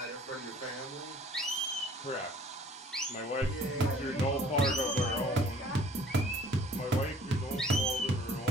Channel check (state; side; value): normal; both; correlation 0.54